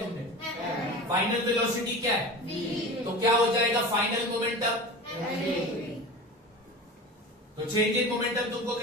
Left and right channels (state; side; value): normal; both; correlation 0.33